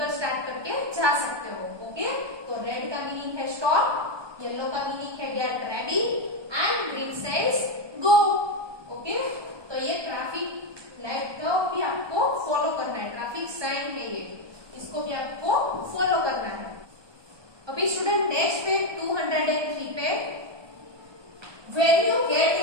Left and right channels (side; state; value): left; late; 1.2 ms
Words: स्टार्ट करके जा सकते हो। ओके, तो रेड का मीनिंग है स्टॉप, येलो का मीनिंग है get ready and green says go. Okay, तो ये ट्रैफिक लाइट को भी आपको फॉलो करना है, ट्रैफिक साइन है ये, इसको भी आपको फॉलो करना है। अभी स्टूडेंट नेक्स्ट पे 203 पे, When you get